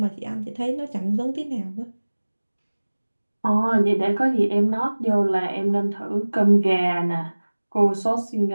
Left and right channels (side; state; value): both; inverted; correlation -1.00